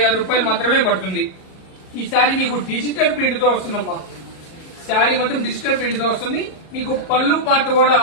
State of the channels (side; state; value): right; late; 38 ms